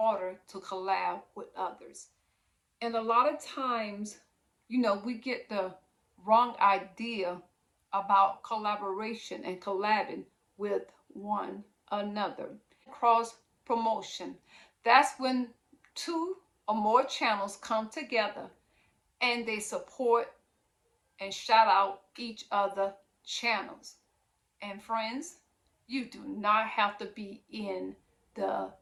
to collab with others. And a lot of times, we get the wrong idea about collaboration and collabing with one another. Cross promotion. That's when two or more channels come together and they support and shout out each other channels. And friends, you do not have to be in the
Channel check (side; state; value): both; identical; correlation 1.00